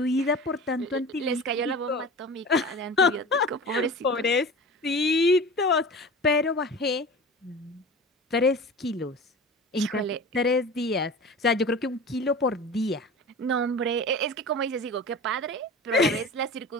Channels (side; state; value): both; normal; correlation 0.35